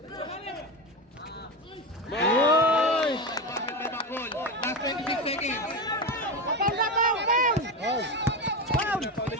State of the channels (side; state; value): both; normal; correlation 0.19